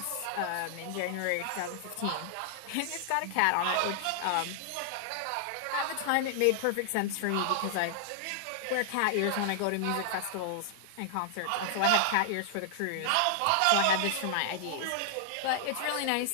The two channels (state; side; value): different; both; correlation -0.01